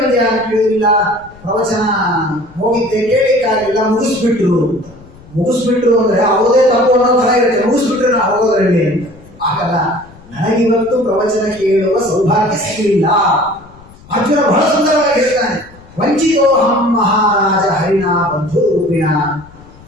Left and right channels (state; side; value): noise; left; rumble, 23 dB below the sound